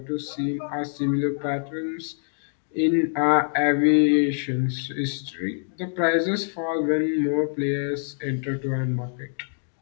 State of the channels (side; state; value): right; silent; digital silence